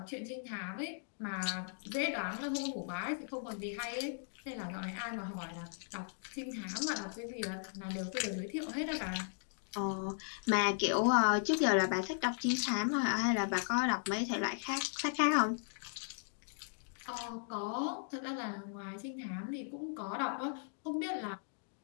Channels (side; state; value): right; silent; digital silence